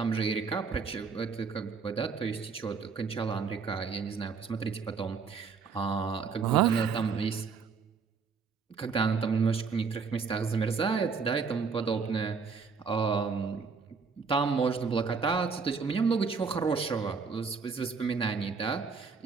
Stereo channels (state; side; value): quieter; left; 5.3 dB